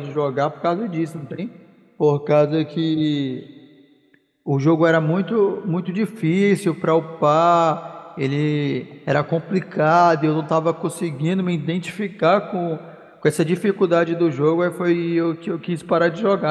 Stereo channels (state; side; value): identical; both; correlation 1.00